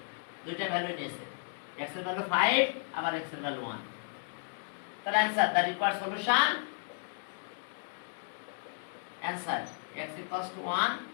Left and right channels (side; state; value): right; silent; digital silence